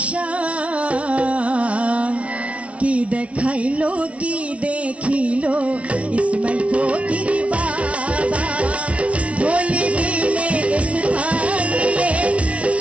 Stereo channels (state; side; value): late; left; 0.063 ms